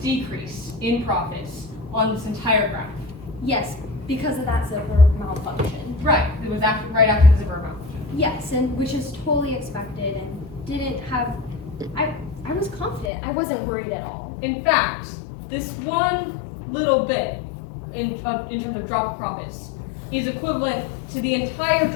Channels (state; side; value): drops out; right; at 13.1 s